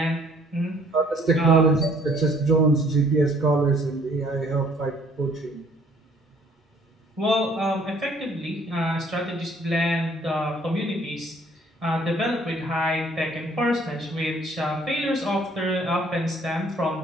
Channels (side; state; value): both; normal; correlation 0.60